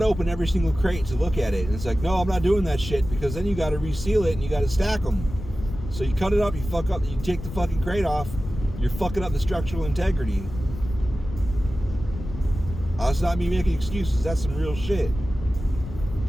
open every single crate to look at it. And it's like, no, I'm not doing that shit because then you got to reseal it and you got to stack them. So you cut it up, you fuck up, you take the fucking crate off, you're fucking up the structural integrity. That's not me making excuses. That's some real shit.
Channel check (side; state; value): left; noise; rumble, 10 dB below the sound